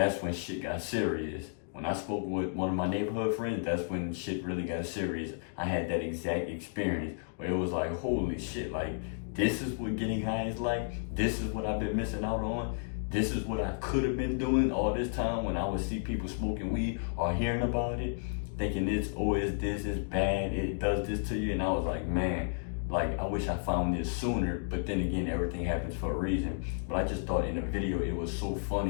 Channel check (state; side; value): silent; right; digital silence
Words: when shit got serious. When I spoke with one of my neighborhood friends, that's when shit really got serious. I had that exact experience where it was like, holy shit, like, this is what getting high is like. This is what I've been missing out on. This is what I could have been doing all this time when I would see people smoking weed or hearing about it, thinking it's bad, it does this to you. And I was like, man, like, I wish I found this sooner. But then again, everything happens for a reason. But I just thought in the video, it was so